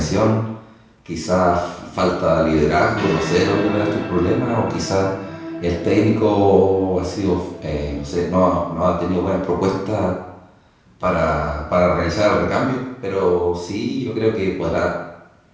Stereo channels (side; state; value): both; identical; correlation 1.00